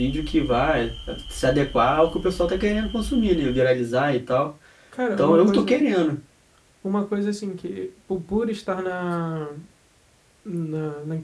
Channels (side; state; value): both; identical; correlation 1.00